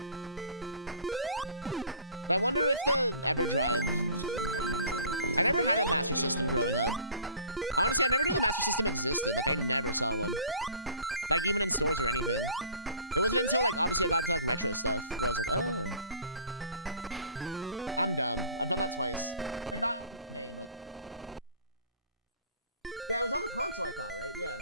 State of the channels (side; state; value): both; inverted; correlation -0.47